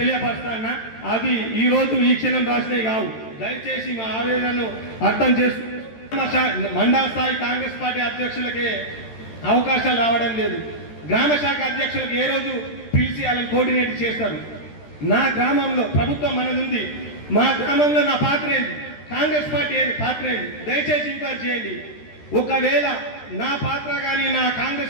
అవి ఈ రోజు ఈ క్షణం రాసినవి కావు. దయచేసి మా ఆవేదనను అర్థం చేసుకుంటూ మండల స్థాయి కాంగ్రెస్ పార్టీ అధ్యక్షులకే అవకాశాలు రావడం లేదు. గ్రామ శాఖ అధ్యక్షులకు ఏ రోజు పిలిచి వాళ్ళని కోఆర్డినేట్ చేస్తారు. నా గ్రామంలో ప్రభుత్వం మనది ఉంది. మా గ్రామంలో నా పాత్ర ఏంటి, కాంగ్రెస్ పార్టీ ఏంటి పాత్ర ఏంటి, దయచేసి ఎంక్వైరీ చేయండి. ఒకవేళ నా పాత్ర కానీ నా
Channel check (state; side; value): late; right; 13 ms